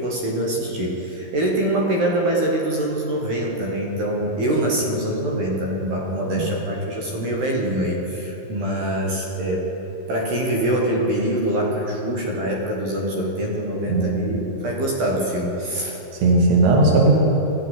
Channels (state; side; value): late; left; 14 ms